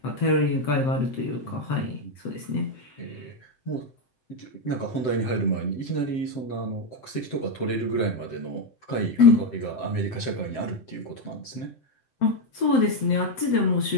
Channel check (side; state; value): right; late; 7.7 ms